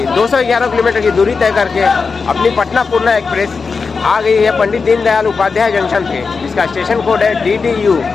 211 किलोमीटर की दूरी तय करके अपनी पटना पूर्णा एक्सप्रेस आ गई है पंडित दीनदयाल उपाध्याय जंक्शन पे, जिसका स्टेशन कोड है DDU।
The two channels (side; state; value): right; quieter; 4.8 dB